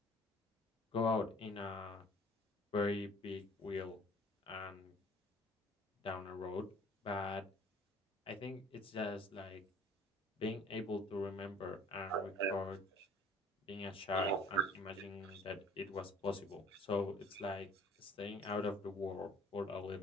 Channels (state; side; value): normal; both; correlation 0.51